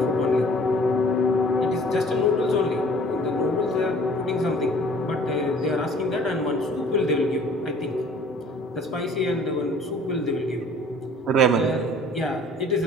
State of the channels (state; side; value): normal; both; correlation 0.52